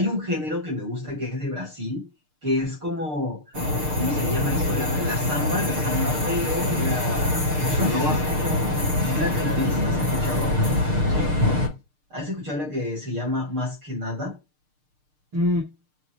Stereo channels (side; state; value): left; late; 6.6 ms